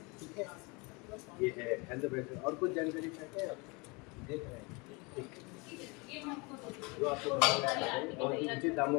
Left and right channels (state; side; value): quieter; right; 28.2 dB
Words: ठीक है, ये है हेल्थ ब्रेसलेट। और कुछ जानकारी चाहते हैं आप? देख रहे हैं, ठीक जो आपको बहुत ही उचित दामों